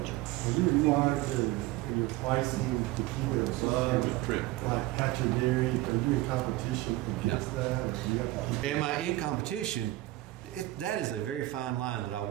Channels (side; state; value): left; quieter; 17.7 dB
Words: are you monitor your pricing to keep it above, like Hatcher Dairy? Are you in competition against that? Or do you have to Am I in competition? That is a very fine line that I